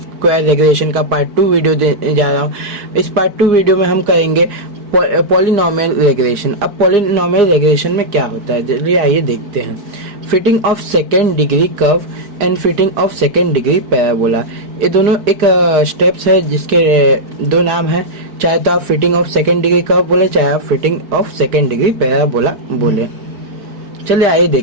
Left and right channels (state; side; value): late; left; 4.5 ms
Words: स्क्वायर रेगुलेशन का पार्ट 2 वीडियो देने जा रहा हूँ। इस पार्ट 2 वीडियो में हम करेंगे पॉलिनोमियल रेगुलेशन। अब पॉलिनोमियल रेगुलेशन में क्या होता है, चलिए आइए देखते हैं। Fitting of second degree curve and fitting of second degree parabola, ये दोनों एक स्टेप्स है जिसके दो नाम है। चाहे तो आप fitting of second degree curve बोले, चाहे आप fitting of second degree parabola बोले। चलिए आइए